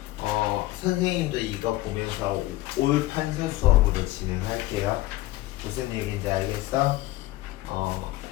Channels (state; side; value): quieter; right; 17.3 dB